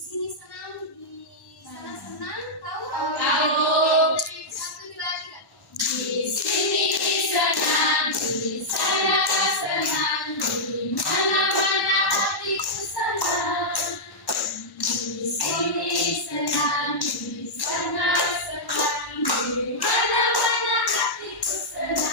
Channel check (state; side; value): late; right; 1.1 ms